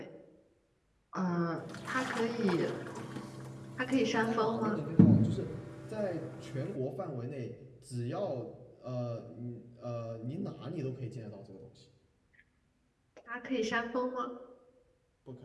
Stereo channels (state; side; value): identical; both; correlation 1.00